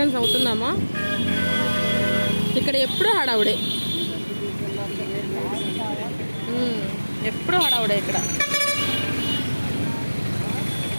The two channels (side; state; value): both; inverted; correlation -1.00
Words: అవుతున్నామా? ఇక్కడ ఎప్పుడు హడావుడే, ఎప్పుడు హడావుడే ఇక్కడ.